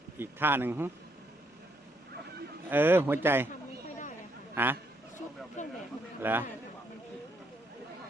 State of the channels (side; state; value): both; normal; correlation 0.73